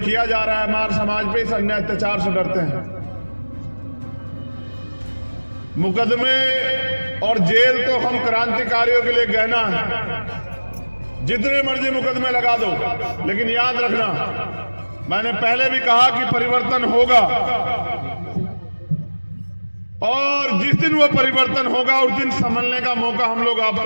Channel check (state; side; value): inverted; both; correlation -1.00